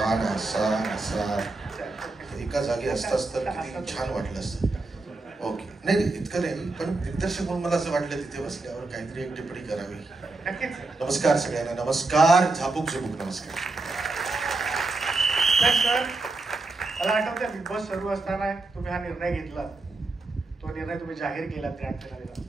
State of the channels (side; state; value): left; quieter; 3.4 dB